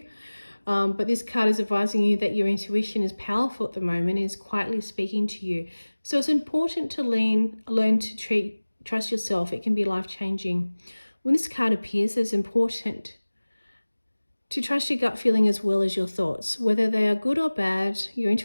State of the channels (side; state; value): both; inverted; correlation -1.00